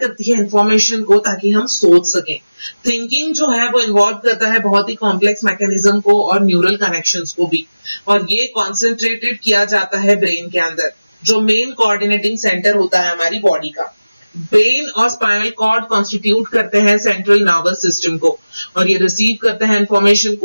है इंफॉर्मेशन को ताकि हम सोच सकें। थिंकिंग जो है वो इन्वॉल्व करता है बहुत ही कॉम्प्लेक्स मैकेनिज्म को और न्यूरल कनेक्शंस को भी, और ये कॉन्सेंट्रेटेड किया जाता है ब्रेन के अंदर जो मेन कोऑर्डिनेटिंग सेंटर होता है हमारी बॉडी का। ब्रेन और स्पाइनल कॉर्ड कॉन्स्टिट्यूट करते हैं सेंट्रल नर्वस सिस्टम को और ये रिसीव करते हैं इंफॉर्मेशन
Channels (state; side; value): inverted; both; correlation -0.98